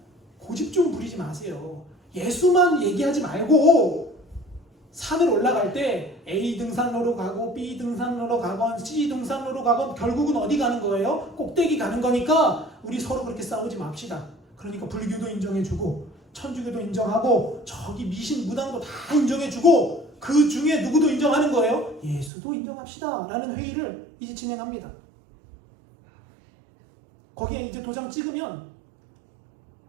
고집 좀 부리지 마세요. 예수만 얘기하지 말고 산을 올라갈 때 A 등산로로 가고 B 등산로로 가건 C 등산로로 가건 결국은 어디 가는 거예요? 꼭대기 가는 거니까 우리 서로 그렇게 싸우지 맙시다. 그러니까 불교도 인정해주고 천주교도 인정하고 저기 미신 무당도 다 인정해주고 그 중에 누구도 인정하는 거예요? 예수도 인정합시다 라는 회의를 이제 진행합니다. 거기에 이제 도장 찍으면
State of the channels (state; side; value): drops out; left; at 22.3 s